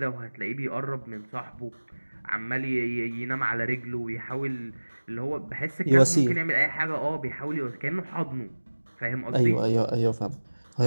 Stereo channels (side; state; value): both; inverted; correlation -1.00